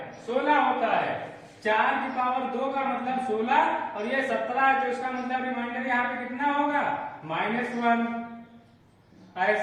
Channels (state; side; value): identical; both; correlation 1.00